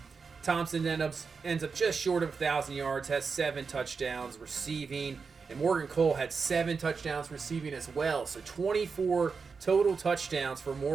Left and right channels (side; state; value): left; quieter; 5.2 dB